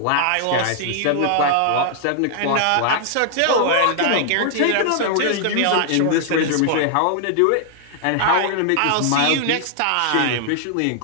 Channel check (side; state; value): both; different; correlation 0.00